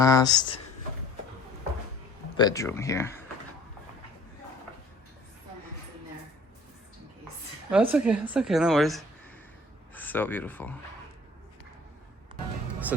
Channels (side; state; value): both; normal; correlation 0.52